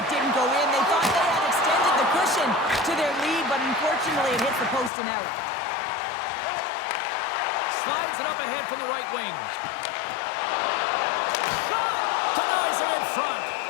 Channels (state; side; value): drops out; right; at 4.9 s